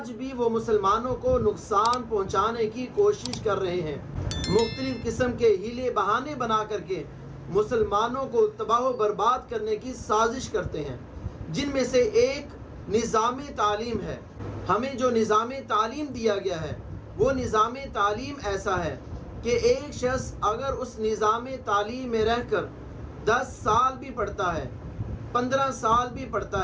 بھی وہ مسلمانوں کو نقصان پہنچانے کی کوشش کر رہے ہیں۔ مختلف قسم کے ہیلے بہانے بنا کر کے مسلمانوں کو تباہ و برباد کرنے کی سازش کرتے ہیں، جن میں سے ایک نظام تعلیم ہے۔ ہمیں جو نظام تعلیم دیا گیا ہے، وہ نظام تعلیم ایسا ہے کہ ایک شخص اگر اس نظام تعلیم میں رہ کر 10 سال بھی پڑھتا ہے، 15 سال بھی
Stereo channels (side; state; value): both; identical; correlation 1.00